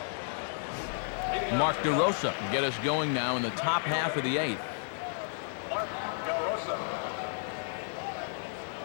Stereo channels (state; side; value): silent; right; digital silence